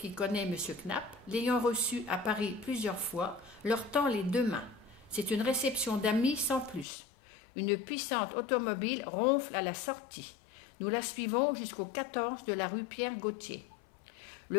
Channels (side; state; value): right; drops out; at 6.9 s